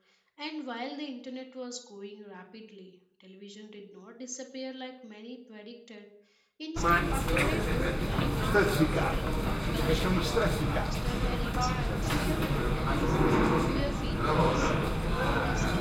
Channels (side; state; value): both; identical; correlation 1.00